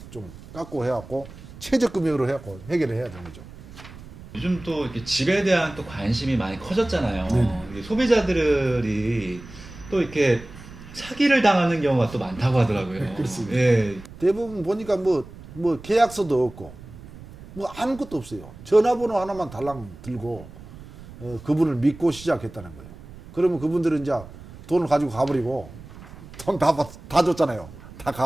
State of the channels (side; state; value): right; noise; rumble, 17 dB below the sound